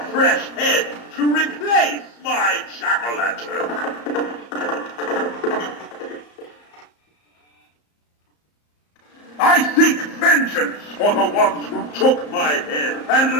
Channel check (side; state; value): right; late; 34 ms